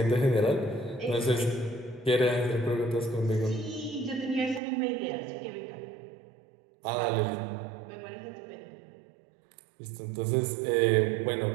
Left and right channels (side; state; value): left; drops out; at 4.6 s